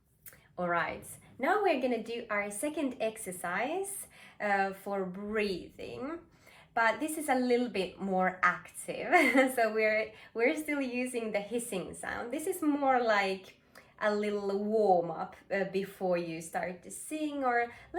All right, now we're gonna do our second exercise for breathing, but this is a little bit more active. So we're still using the hissing sound. This is more like a little warm up before you start to sing, or a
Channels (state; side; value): identical; both; correlation 1.00